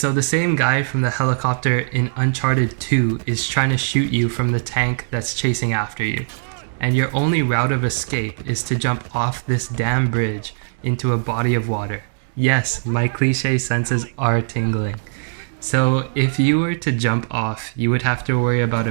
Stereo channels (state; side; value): silent; left; digital silence